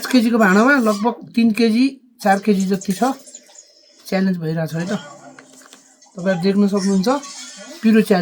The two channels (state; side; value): identical; both; correlation 1.00